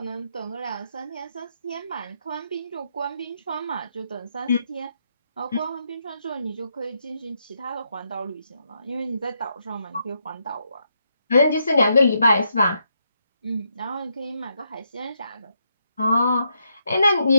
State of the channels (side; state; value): both; inverted; correlation -0.80